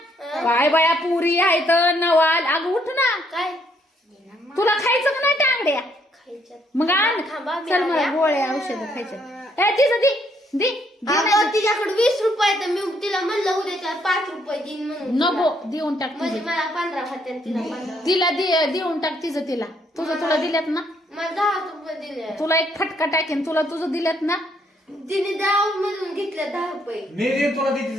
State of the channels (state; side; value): normal; both; correlation 0.70